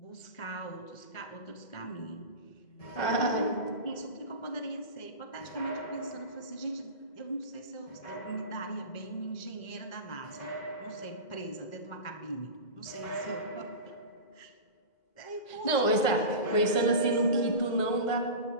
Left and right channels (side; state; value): right; late; 2.1 ms